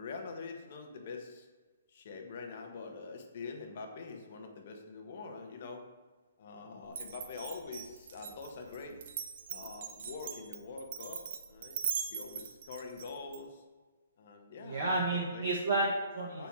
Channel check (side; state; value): both; inverted; correlation -0.56